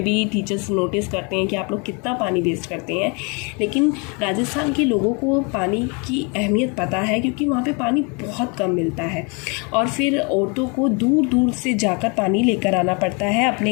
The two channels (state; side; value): quieter; right; 32.6 dB